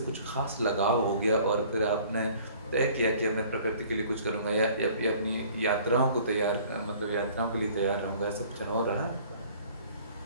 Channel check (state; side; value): inverted; both; correlation -0.53